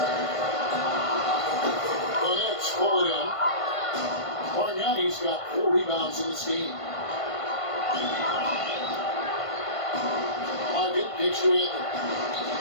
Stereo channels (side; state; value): right; late; 1.5 ms